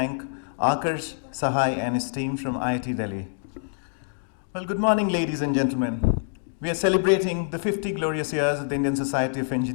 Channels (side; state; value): right; silent; digital silence